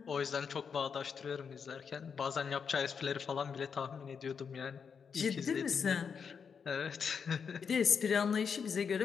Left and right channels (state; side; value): quieter; right; 6.4 dB